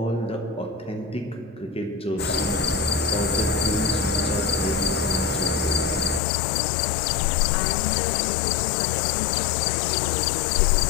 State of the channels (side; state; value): right; drops out; at 6.2 s